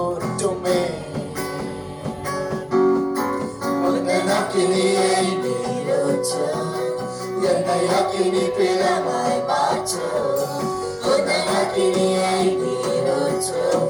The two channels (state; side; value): identical; both; correlation 1.00